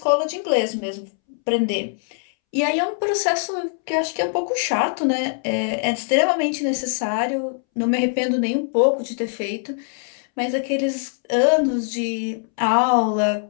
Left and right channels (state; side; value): silent; right; 64 dB below the other